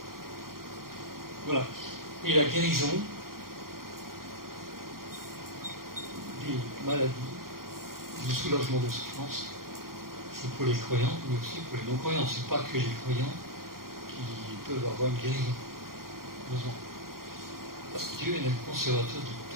Voilà. Et la guérison des maladies, du soulagement de souffrance, c'est pour les croyants, mais aussi pour les non-croyants. Ce n'est pas que les croyants qui peuvent avoir une guérison. Heureusement. Parce que Dieu est le conservateur de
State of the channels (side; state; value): left; late; 0.92 ms